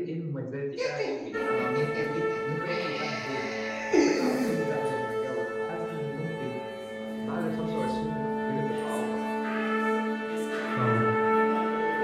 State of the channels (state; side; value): identical; both; correlation 1.00